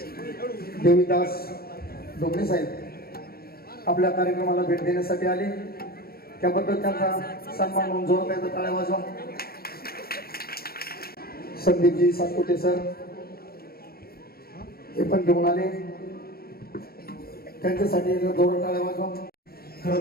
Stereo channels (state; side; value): late; right; 0.44 ms